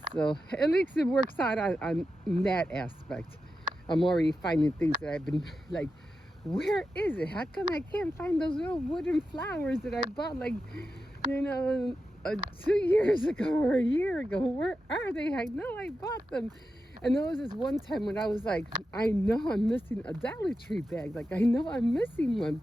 So at least it works out on that aspect. I'm already finding things that I've been like, where is it? How come I can't find those little wooden flowers that I bought like, 2 years ago or a year ago? Where are they? I know I bought them. And there was this one time when I was like, I know I'm missing a Dollar Tree bag. Like, I know I'm missing one.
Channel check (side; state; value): both; normal; correlation 0.90